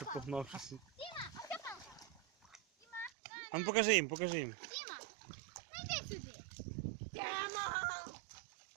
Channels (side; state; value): left; drops out; at 3.1 s